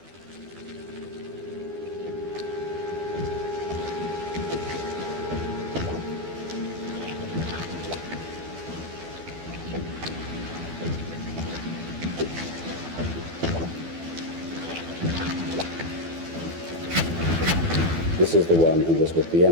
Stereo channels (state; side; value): late; left; 12 ms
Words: is the one who was with the